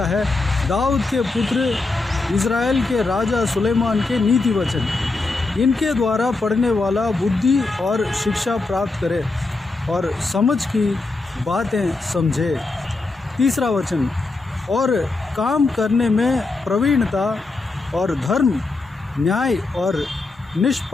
है, दाऊद के पुत्र इज़राइल के राजा सुलेमान के नीति वचन, इनके द्वारा पढ़ने वाला बुद्धि और शिक्षा प्राप्त करे और समझ की बातें समझे। तीसरा वचन, और काम करने में प्रवीणता और धर्म, न्याय और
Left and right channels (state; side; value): quieter; right; 3.5 dB